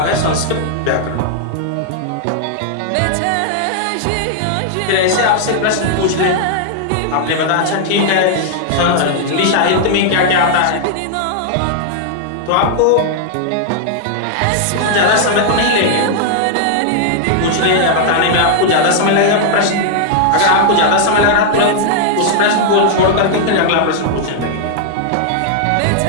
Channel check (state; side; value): different; both; correlation -0.01